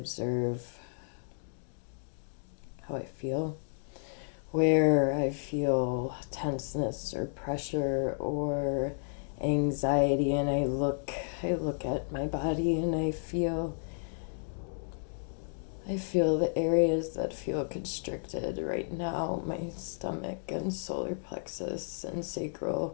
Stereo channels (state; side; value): silent; right; digital silence